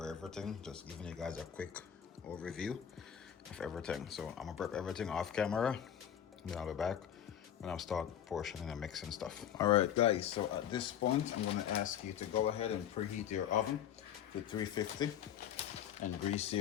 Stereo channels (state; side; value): quieter; right; 9.7 dB